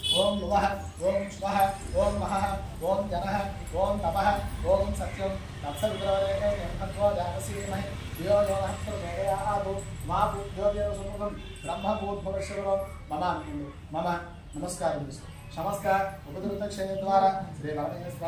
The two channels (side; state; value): both; identical; correlation 1.00